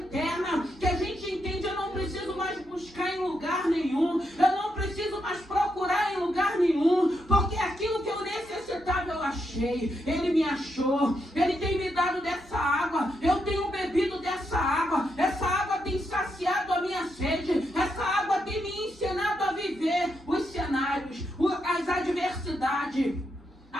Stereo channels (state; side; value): normal; both; correlation 0.82